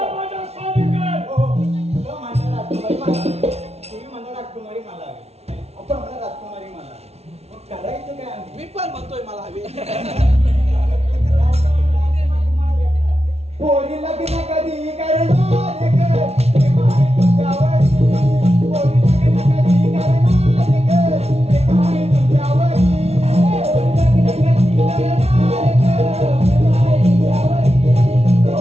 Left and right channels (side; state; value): left; late; 0.31 ms